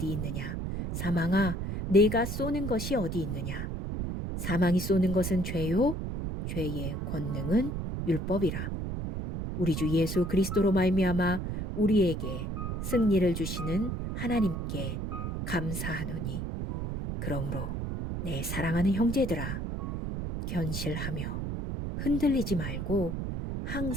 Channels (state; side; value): noise; right; rumble, 3 dB below the sound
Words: 있느냐? 사망아, 내가 쏘는 것이 어디 있느냐? 사망이 쏘는 것은 죄요, 죄의 권능은 율법이라. 우리 주 예수 그리스도로 말미암아 우리에게 승리를 주시는 하나님께 감사하노니 그러므로 내 사랑하는 형제들아 견실하며 흔들리지 말고